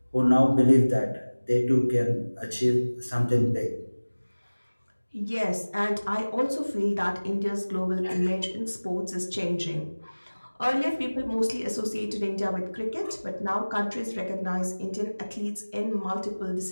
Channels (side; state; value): both; inverted; correlation -1.00